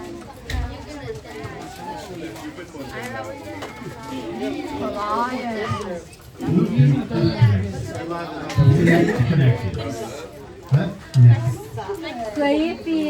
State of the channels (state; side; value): identical; both; correlation 1.00